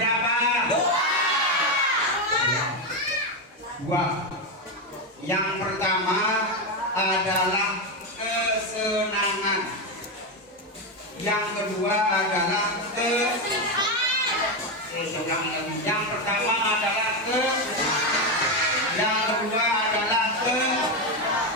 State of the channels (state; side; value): normal; both; correlation 0.09